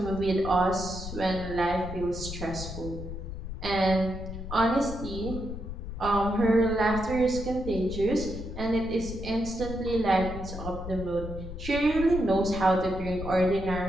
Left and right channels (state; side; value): noise; left; rumble, 8 dB below the sound